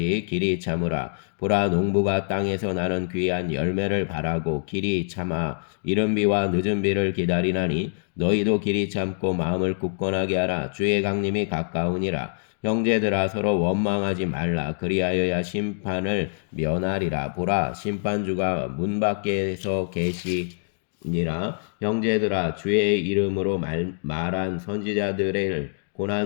길이 참으라. 보라 농부가 땅에서 나는 귀한 열매를 바라고 길이 참아 이른 비와 늦은 비를 기다리나니 너희도 길이 참고 마음을 굳건하게 하라. 주의 강림이 가까우니라. 형제들아 서로 원망하지 말라. 그리하여야 심판을 면하리라. 보라 심판주가 문 밖에서 계시니라. 형제들아 주의 이름으로 말한 선지자들의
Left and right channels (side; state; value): right; silent; digital silence